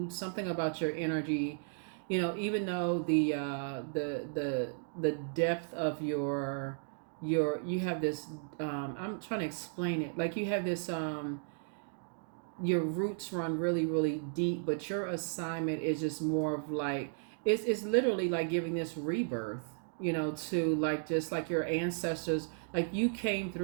Something about your energy, even though the depth of you have this, I'm trying to explain it, like you have this, your roots run really really deep, but your assignment is just more of like, it's literally like giving this rebirth, to like just like your ancestors, like you came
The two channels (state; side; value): silent; left; digital silence